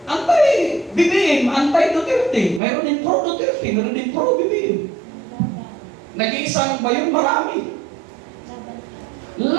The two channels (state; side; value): drops out; left; at 2.6 s